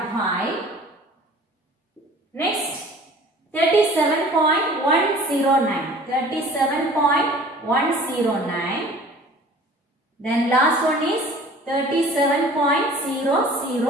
Next 37.109. 37.109. Then last one is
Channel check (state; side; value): normal; both; correlation 0.47